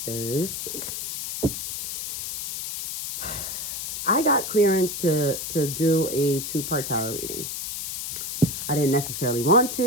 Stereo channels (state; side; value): noise; left; hiss, 5 dB below the sound